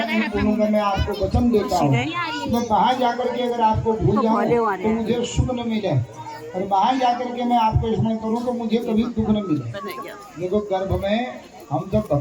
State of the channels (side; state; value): both; identical; correlation 1.00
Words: नहीं भूलूंगा, मैं आपको वचन देता हूँ, तो बाहर जाकर के अगर आपको भूल जाऊँ तो मुझे सुख न मिले, और बाहर जाकर के मैं आपको स्मरण करूँ तो मुझे कभी दुख न मिले। देखो गर्भ में हम जब